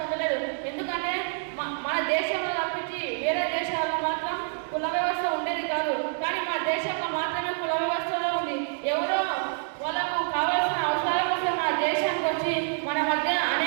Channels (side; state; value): left; silent; 60 dB below the other